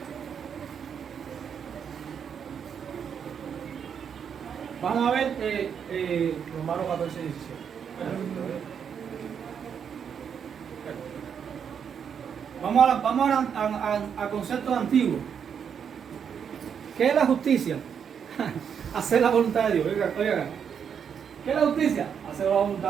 Vamos a ver Romanos 14, 17. Vamos a conceptos antiguos. ¿Qué es la justicia? Hacer la voluntad de Dios. Oiga. ¿Qué es la justicia? Hacer la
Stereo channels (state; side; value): quieter; left; 7.5 dB